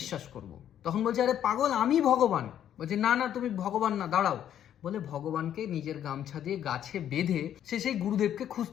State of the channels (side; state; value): right; quieter; 10.3 dB